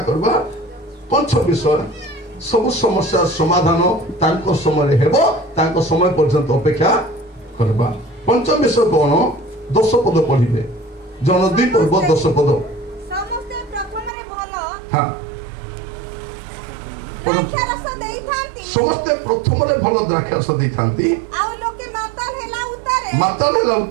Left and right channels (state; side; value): drops out; left; at 14.1 s